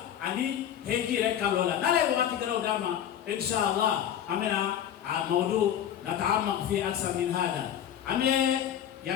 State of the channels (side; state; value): right; quieter; 10.1 dB